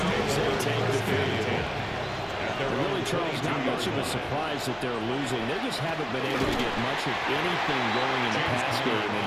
as they take the field. Really, Charles, not much of a surprise that they're losing. They just haven't been able to get much of anything going in the pass game.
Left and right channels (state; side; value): identical; both; correlation 1.00